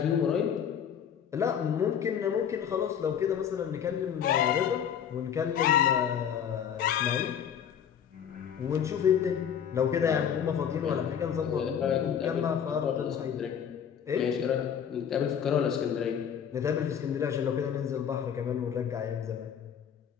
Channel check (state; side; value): quieter; right; 8.4 dB